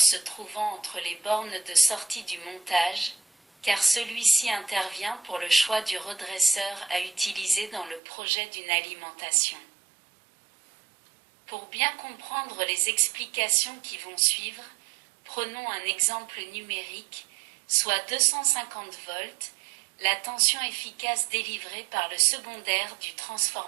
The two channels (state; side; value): drops out; left; at 8.0 s